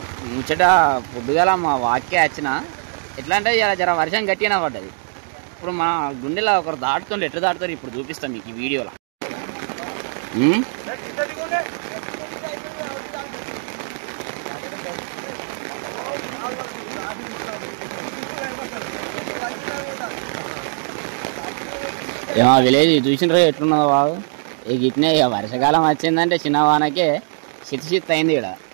ముచ్చట పొద్దుగాల మా వాక్య వచ్చిన ఎట్లా అంటే ఇలా జర వర్షం గట్టిగా పడ్డది. ఇప్పుడు మా గుండెలో ఒకరు దాటుతుండే ఎట్లా దాటుతారు ఇప్పుడు చూపిస్తాం మీకు ఈ వీడియోలో. ఏమో విలేజ్ చూసినారు ఎట్లున్నదో బాగు. ఇక ఇట్నే ఇక వర్షాకాలం వచ్చిందంటే చిన్న వానకే శిత్ అయింది ఇక్కడ.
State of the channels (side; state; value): left; silent; digital silence